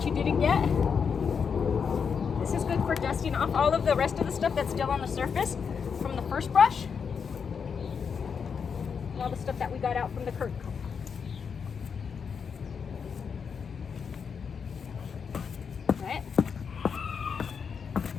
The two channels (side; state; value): right; quieter; 6.3 dB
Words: didn't get. This is good for dusting off all of the rest of the stuff that's still on the surface from the first brush. And all the stuff that we got out from the curtain comb. Right?